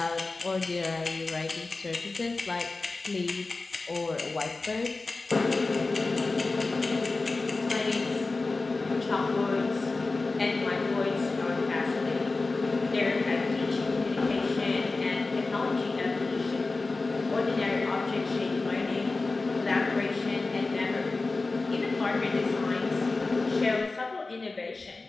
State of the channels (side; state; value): right; quieter; 3.6 dB